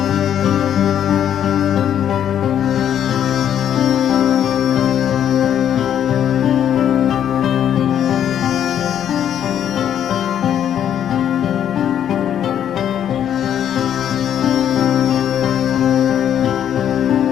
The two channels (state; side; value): quieter; right; 9.7 dB